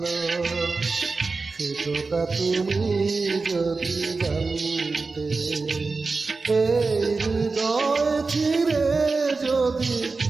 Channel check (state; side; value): quieter; left; 4.0 dB